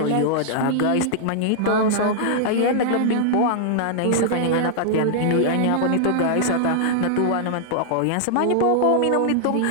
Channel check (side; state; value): both; different; correlation -0.01